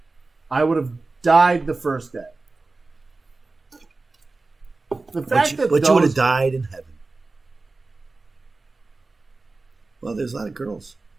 I would have died the first day. The fact that you would have died in heaven. Well, there's a lot of girls.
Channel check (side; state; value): left; quieter; 3.5 dB